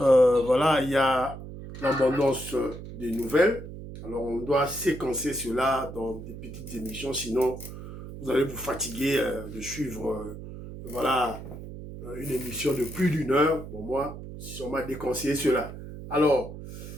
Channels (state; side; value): noise; right; hum, 11 dB below the sound